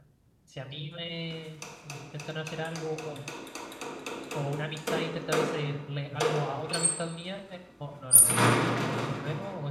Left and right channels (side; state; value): both; identical; correlation 1.00